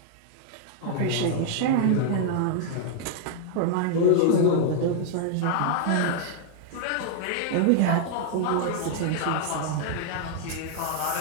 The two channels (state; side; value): different; both; correlation -0.01